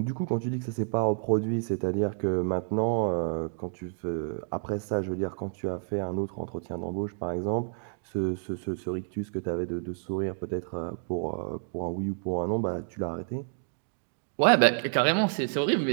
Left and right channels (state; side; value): silent; left; digital silence